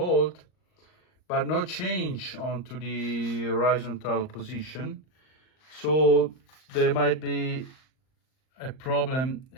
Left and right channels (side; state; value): right; late; 38 ms